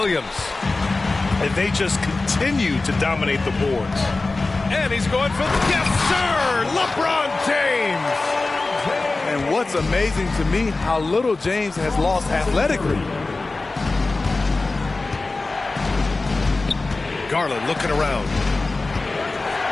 And they just continue to dominate the boards. And he's going for the... Yes, sir! LeBron James! it's amazing to me how little James has lost athletically. Garland looking around.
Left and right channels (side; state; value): right; quieter; 3.4 dB